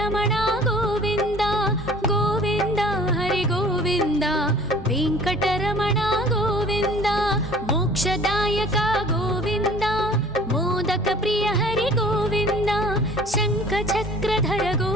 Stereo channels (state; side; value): normal; both; correlation 0.48